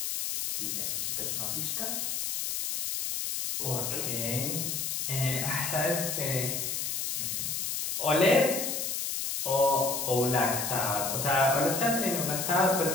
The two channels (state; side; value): noise; left; hiss, 2 dB below the sound